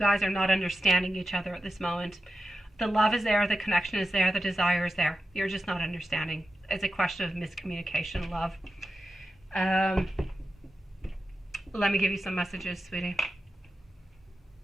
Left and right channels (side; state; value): both; normal; correlation 0.91